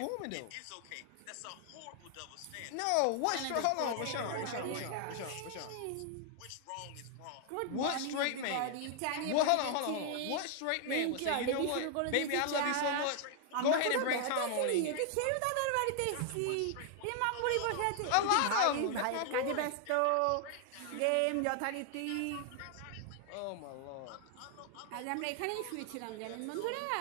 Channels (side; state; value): both; different; correlation 0.00